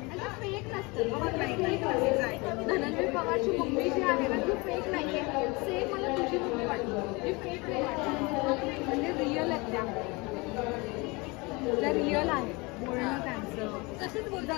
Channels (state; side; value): quieter; right; 26.2 dB